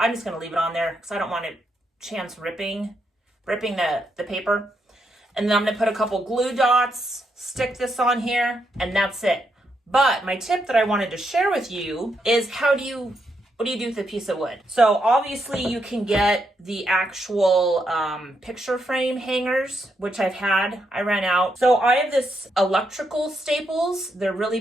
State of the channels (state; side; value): normal; both; correlation 0.80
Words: just going to leave it on there because I don't want it chance ripping the paper. And then I'm going to put a couple glue dots, stick this on here, and that's it. But my tip that I wanted to share with you is what do you do with a piece of wood? So obviously you can get the actual picture frame hangers, which I ran out. So I have this electrical staples. They're really